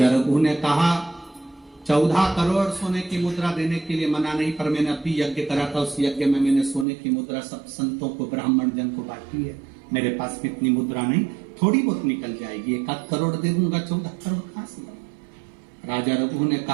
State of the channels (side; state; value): left; drops out; at 6.9 s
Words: रघु ने कहा 14 करोड़ सोने की मुद्रा देने के लिए मना नहीं, पर मैंने अभी यज्ञ करा था, उस यज्ञ में मैंने सोने की मुद्रा सब संतों को, ब्राह्मण जन को बांटी है। मेरे पास कितनी मुद्रा नहीं, थोड़ी बहुत निकल जाएगी, 1 करोड़ दे दूंगा, 14 करोड़ कहां से? राजा रघु ने